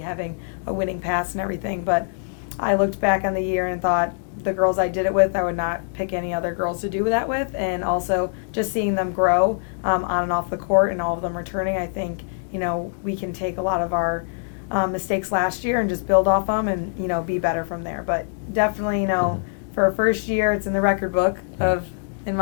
having a winning past and everything. But I looked back on the year and thought the girls I did it with, I would not pick any other girls to do that with. And also just seeing them grow on and off the court and all of them returning, I think, we can take a lot of our mistakes last year and just build off them and, be better from there. But definitely, for a first year, it's in the record book in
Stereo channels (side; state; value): right; silent; digital silence